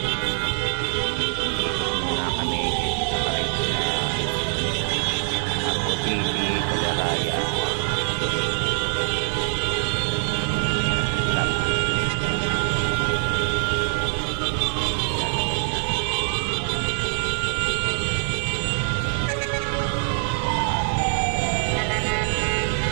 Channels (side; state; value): left; silent; digital silence